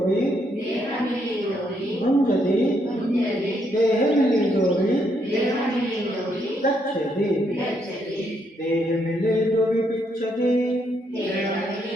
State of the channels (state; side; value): normal; both; correlation 0.75